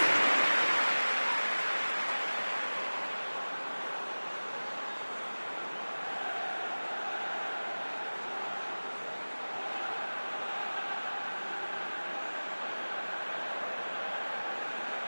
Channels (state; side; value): inverted; both; correlation -1.00